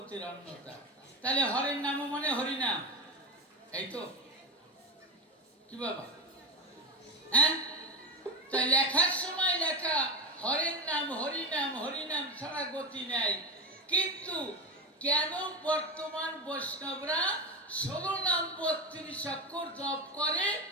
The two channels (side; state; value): both; normal; correlation 0.17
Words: অন্যতা। তাহলে হরের নাম মানে হরিনাম, এই তো কি বাবা? হ্যাঁ, তাই লেখার সময় লেখা হরের নাম হরিনাম, হরিনাম ছাড়া গতি নেই। কিন্তু কেন বর্তমান বৈষ্ণবরা 16 নাম 32 অক্ষর জপ করে,